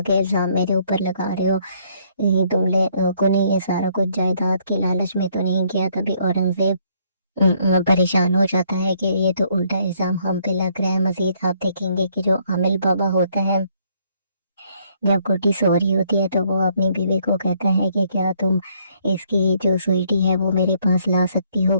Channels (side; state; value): both; inverted; correlation -0.67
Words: इल्ज़ाम मेरे ऊपर लगा रहे हो, तुम लोगों ने ये सारा कुछ जायदाद की लालच में तो नहीं किया। तभी औरंगजेब परेशान हो जाता है कि ये तो उल्टा इल्जाम हम पे लग रहा है। मजीद आप देखेंगे कि जो आमिल बाबा होता है जब गुड्डी सो रही होती है तो वो अपनी बीवी को कहता है कि क्या तुम इसकी जो स्वीटी है वो मेरे पास ला सकती हो